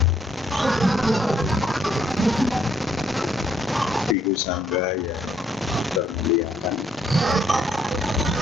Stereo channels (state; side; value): normal; both; correlation 0.69